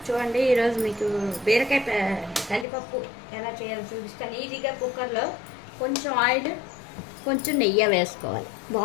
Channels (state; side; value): drops out; right; at 2.7 s